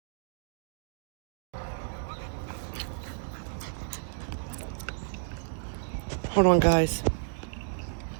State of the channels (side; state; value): left; silent; digital silence